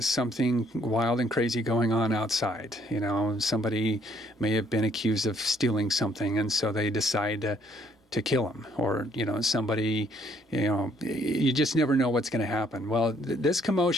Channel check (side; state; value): both; normal; correlation 0.66